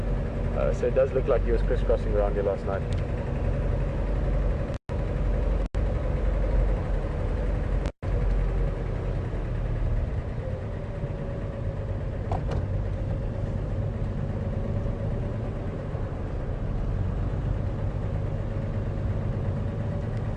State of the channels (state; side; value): identical; both; correlation 1.00